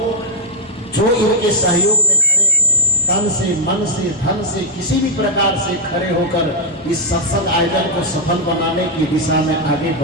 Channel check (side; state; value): both; normal; correlation 0.01